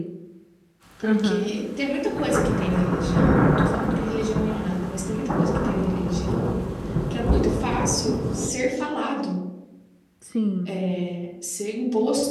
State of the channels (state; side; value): identical; both; correlation 1.00